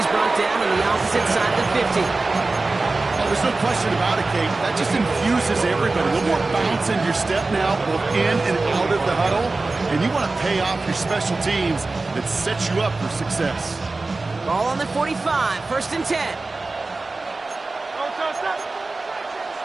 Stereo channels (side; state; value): left; quieter; 3.5 dB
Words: brought down on the opposite side of the 50. Oh, there's no question about it, Kate. That just infuses everybody. A little more bounce in your step now, both in and out of the huddle. And you want to pay off your special teams that set you up for success. Ball on the 45, 1st and 10.